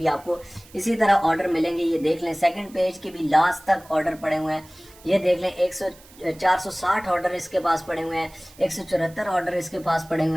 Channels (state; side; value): noise; right; hiss, 24 dB below the sound